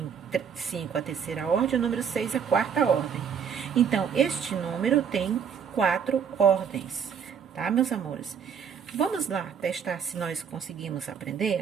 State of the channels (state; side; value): quieter; left; 7.2 dB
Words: a terceira ordem, o número 6 a quarta ordem. Então, este número tem 4 ordens, tá, meus amores? Vamos lá testar se nós conseguimos aprender